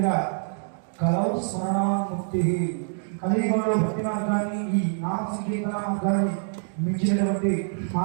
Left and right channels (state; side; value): silent; left; digital silence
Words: కలవు స్మరణాముక్తి కలియుగంలో భక్తి మార్గాన్ని ఈ నామ సంకీర్తన మార్గాన్ని మించినటువంటి